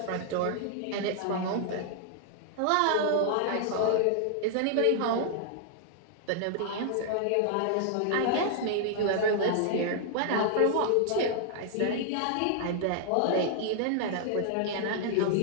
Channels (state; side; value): different; both; correlation -0.01